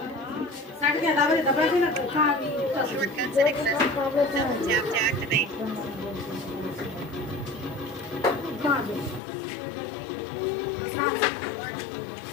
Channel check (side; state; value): right; drops out; at 9.2 s